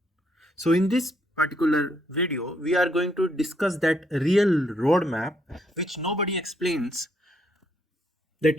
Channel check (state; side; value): normal; both; correlation 0.73